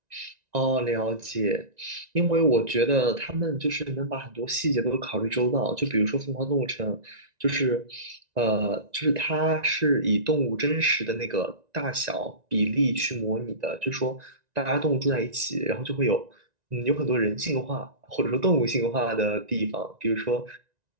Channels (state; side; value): late; left; 1.9 ms